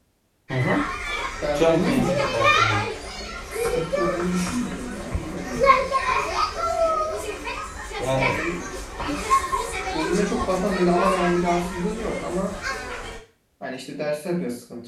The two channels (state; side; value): identical; both; correlation 1.00